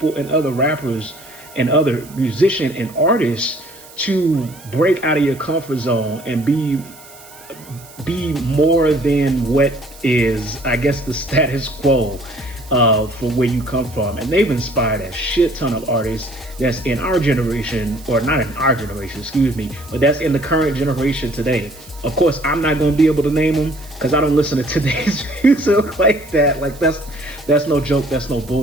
and other rappers and other musicians and artists to break out of your comfort zone and be more than what is, I guess, the status quo for where you come from. And they've inspired a shit ton of artists that's in our generation, or not in our generation, excuse me, but that's in the current generation today. Of course, I'm not going to be able to name them because I don't listen to today's music like that. Like, that's no joke, that's no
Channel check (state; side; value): noise; right; hiss, 21 dB below the sound